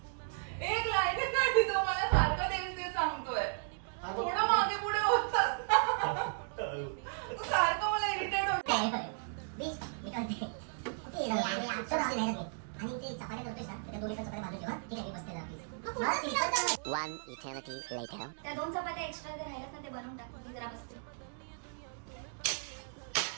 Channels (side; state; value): left; silent; digital silence